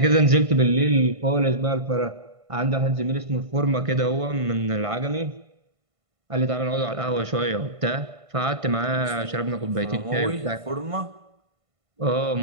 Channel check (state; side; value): late; left; 1.5 ms